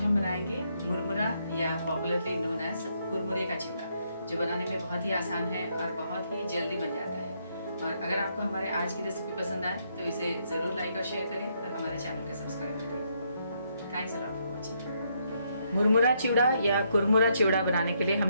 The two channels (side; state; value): both; inverted; correlation -0.75